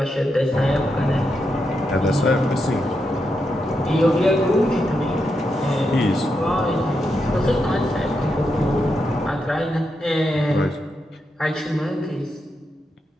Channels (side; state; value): both; normal; correlation 0.84